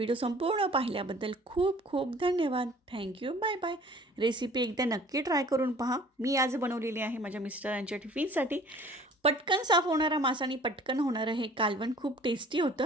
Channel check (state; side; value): normal; both; correlation 0.50